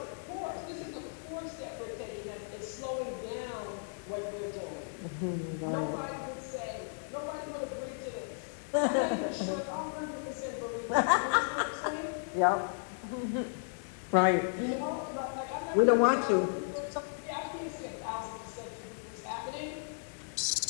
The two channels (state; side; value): silent; right; digital silence